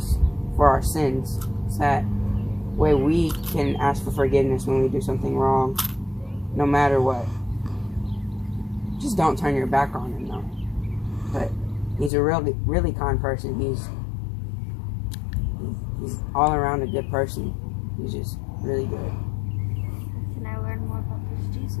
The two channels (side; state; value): right; drops out; at 12.1 s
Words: for our sins, so that way we can ask for forgiveness when we do something wrong, no matter what. Just don't turn your back on him, though. But he's a really, really kind person. He's all around a good person. He's just really good. Can I learn more about this